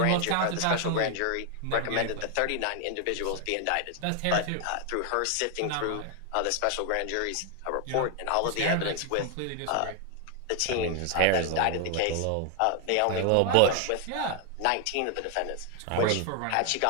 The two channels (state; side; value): different; both; correlation 0.00